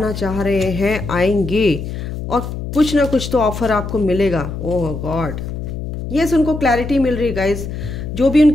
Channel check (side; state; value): left; noise; hum, 6 dB below the sound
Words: चाह रहे हैं, आएंगे, और कुछ ना कुछ तो ऑफर आपको मिलेगा। ओह गॉड, यस, उनको क्लैरिटी मिल रही है गाइज। जो भी